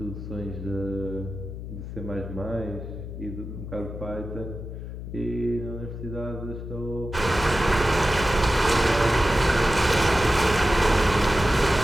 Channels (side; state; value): left; noise; hum, 9 dB below the sound